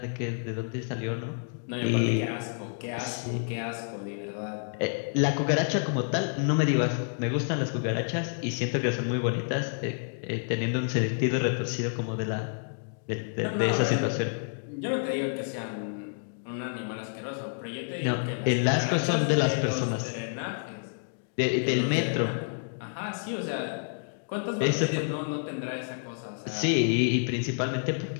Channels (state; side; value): silent; right; digital silence